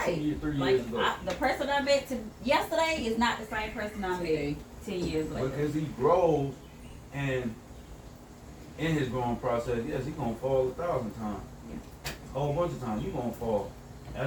2 years, 3 years ago. The person I met yesterday is not the same person I met 10 years later. Because he grows and in his growing process, yes, he gonna fall 1,000 times. A whole bunch of times, you gonna fall.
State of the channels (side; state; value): both; identical; correlation 1.00